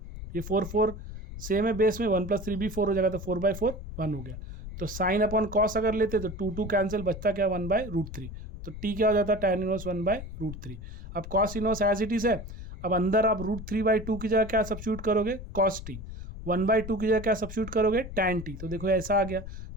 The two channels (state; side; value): noise; left; rumble, 10 dB below the sound